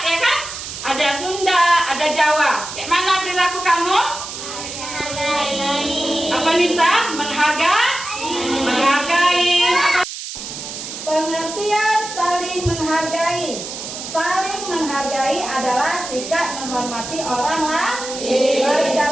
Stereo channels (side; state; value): right; noise; hiss, 9 dB below the sound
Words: ya kan? Ada Sunda, ada Jawa. Kayak mana perilaku kamu? Apa Nisa? Menghargai. Pengertian saling menghargai. Saling menghargai adalah sikap menghormati orang lain, baik